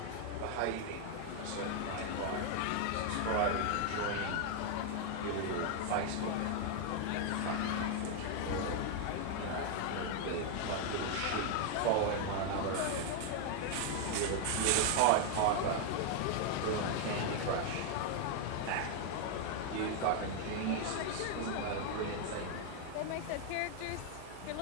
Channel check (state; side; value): different; both; correlation 0.00